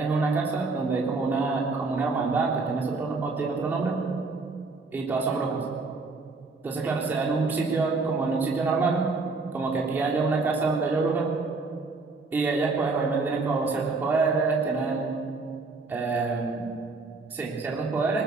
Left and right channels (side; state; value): left; quieter; 3.9 dB